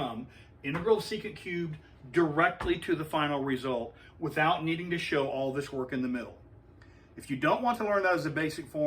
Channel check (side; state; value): both; identical; correlation 1.00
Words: integral of secant cubed directly to the final result without needing to show all this work in the middle. If you don't want to learn that as a basic